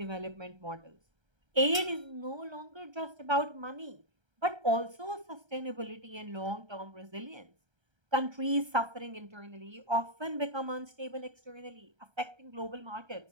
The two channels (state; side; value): late; left; 1.3 ms